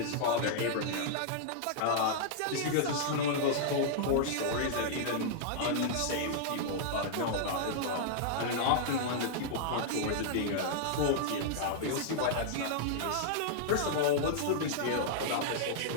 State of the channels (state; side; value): different; both; correlation -0.01